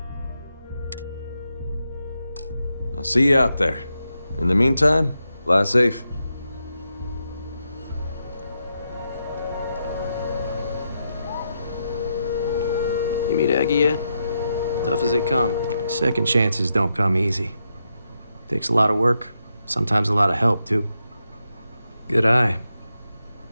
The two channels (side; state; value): both; inverted; correlation -0.84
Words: I'll see you out there. In the meantime, fly safe. You meet Aggie yet? Tough as they come. Second chances don't come easy. Takes a lot of work, sometimes a lot of help, too. Good eye.